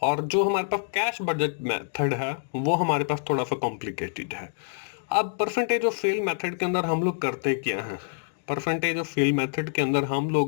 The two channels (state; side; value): silent; right; digital silence